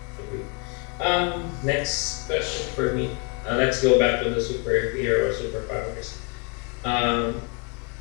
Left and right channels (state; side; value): quieter; right; 35.3 dB